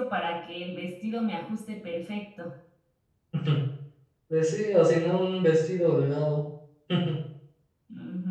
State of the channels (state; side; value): identical; both; correlation 1.00